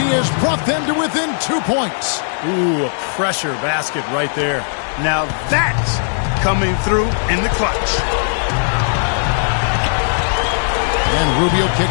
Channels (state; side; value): silent; right; digital silence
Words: has brought them to within 2 points. Ooh, a pressure basket right there. Now that's coming through in the clutch. And Rubio